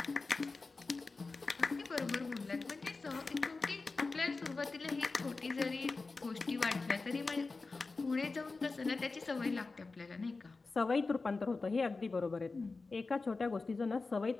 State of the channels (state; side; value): quieter; right; 3.9 dB